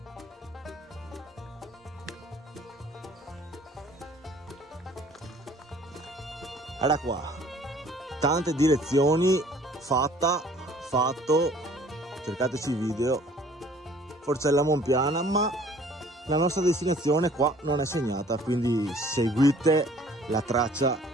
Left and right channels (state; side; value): normal; both; correlation 0.54